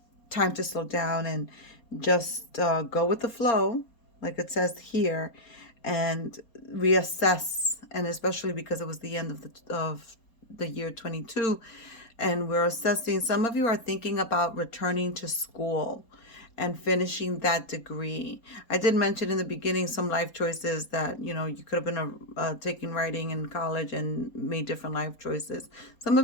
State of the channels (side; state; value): right; late; 4.3 ms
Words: to slow down and just go with the flow, like it says here, and reassess. And especially because it was the end of the year 22, and we're assessing. Some of you are thinking about returning to school and finishing that degree. I did mention in the beginning some life choices that, you know, you could have been taking writing in college and made different life choices. Some